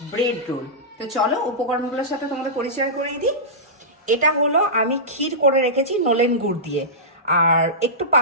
ব্রেড রোল। তো চলো উপকরণগুলোর সাথে তোমাদের পরিচয় করিয়ে দিই। এটা হলো আমি ক্ষীর করে রেখেছি নলেন গুড় দিয়ে, আর একটু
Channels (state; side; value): normal; both; correlation -0.16